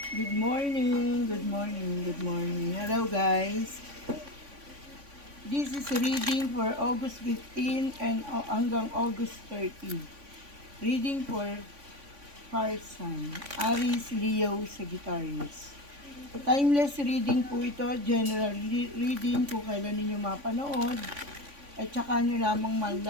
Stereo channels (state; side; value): late; left; 3.5 ms